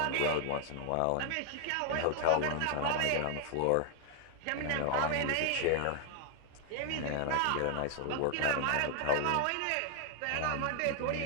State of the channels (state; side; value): different; both; correlation 0.00